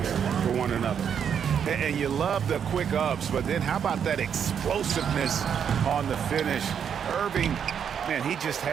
for one another. And you love the quick ups, but then how about that explosiveness on the finish? Irving, man, he just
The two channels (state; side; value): quieter; left; 7.9 dB